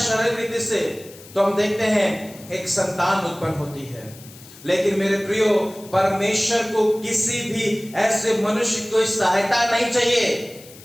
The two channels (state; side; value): noise; left; hiss, 20 dB below the sound